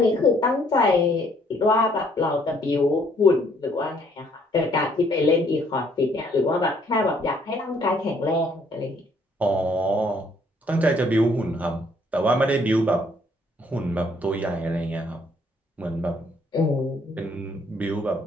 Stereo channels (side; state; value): both; normal; correlation 0.65